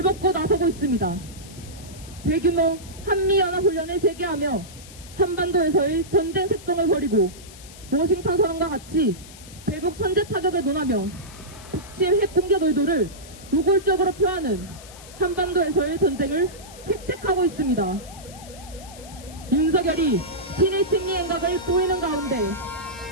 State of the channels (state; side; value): noise; left; hiss, 18 dB below the sound